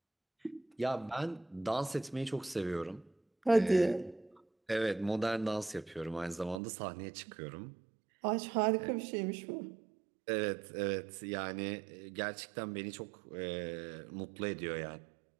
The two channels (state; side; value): drops out; left; at 6.6 s